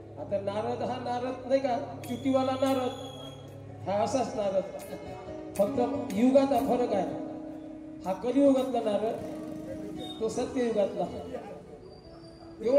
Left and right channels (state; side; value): identical; both; correlation 1.00